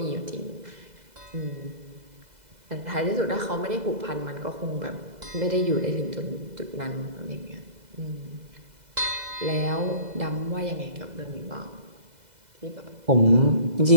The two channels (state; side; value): late; left; 2.0 ms